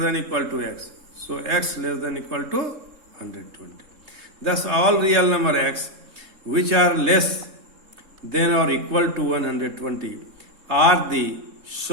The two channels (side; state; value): left; late; 3.7 ms